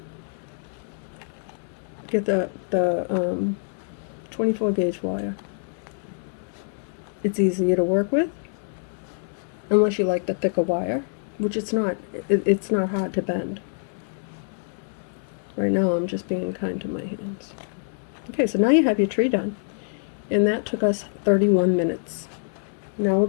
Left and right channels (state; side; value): silent; right; 61 dB below the other